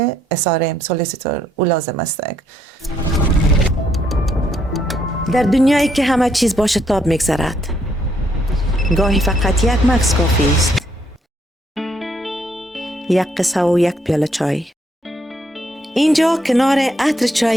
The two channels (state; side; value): normal; both; correlation 0.72